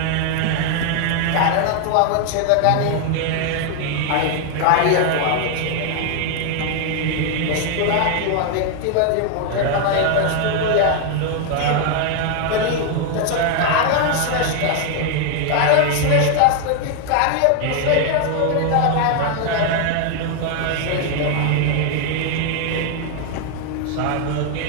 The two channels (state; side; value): different; both; correlation 0.00